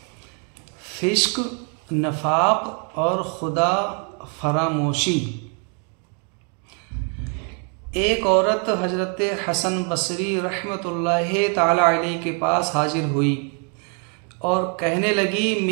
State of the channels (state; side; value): quieter; left; 39.9 dB